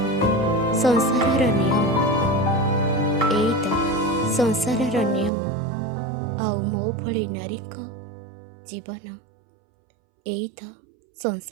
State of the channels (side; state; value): left; drops out; at 5.3 s